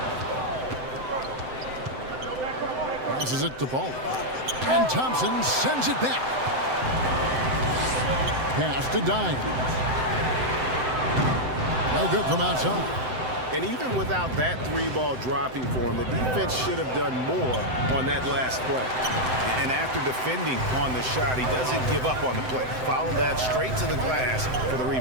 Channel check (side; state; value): left; late; 7.8 ms